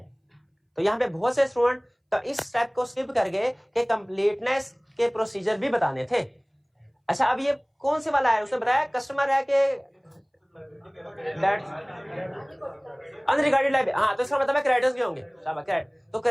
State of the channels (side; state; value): both; identical; correlation 1.00